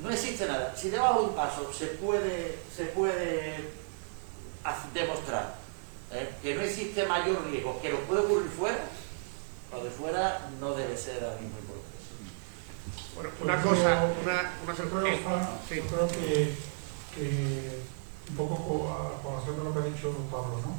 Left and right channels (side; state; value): left; silent; 56 dB below the other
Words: existe nada. Si debajo de un paso se puede demostrar que no existe mayor riesgo que lo puede ocurrir fuera, lo de fuera no debe ser la misma importancia. Bueno, una cosa, creo que un poco por hacer lo que ha dicho Pablo, ¿no?